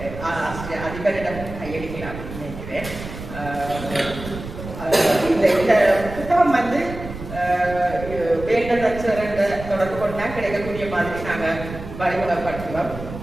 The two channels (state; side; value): noise; right; rumble, 11 dB below the sound